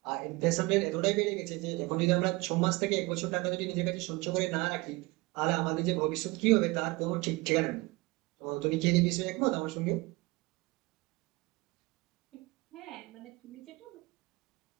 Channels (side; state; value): left; quieter; 23.3 dB